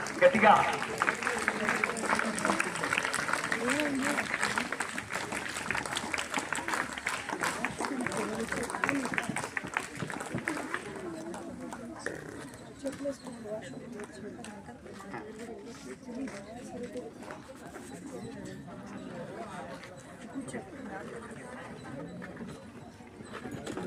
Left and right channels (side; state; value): both; identical; correlation 1.00